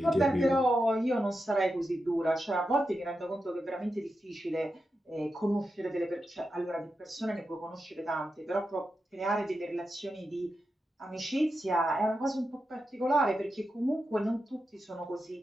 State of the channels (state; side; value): normal; both; correlation 0.88